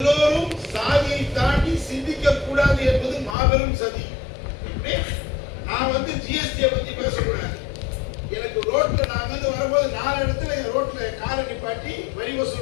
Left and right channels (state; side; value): drops out; right; at 3.4 s